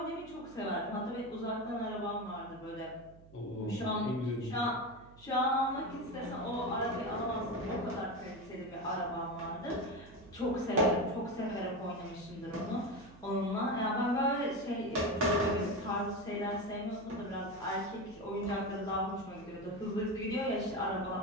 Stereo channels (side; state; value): right; noise; hum, 21 dB below the sound